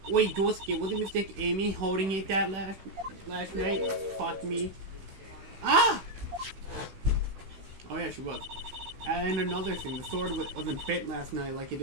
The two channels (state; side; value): late; left; 16 ms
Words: Wait, Dorski, wasn't Mistake Amy holding it that last night? Fuck me. Ah! Oh yeah, she was. And another thing, the sword wasn't fit last night like it